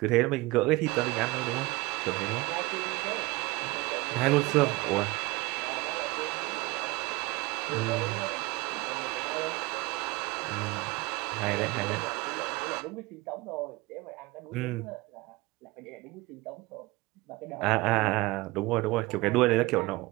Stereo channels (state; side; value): quieter; left; 21.9 dB